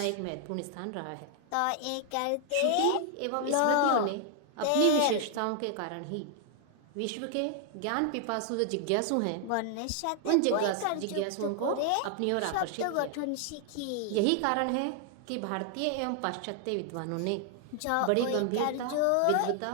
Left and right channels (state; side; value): different; both; correlation 0.00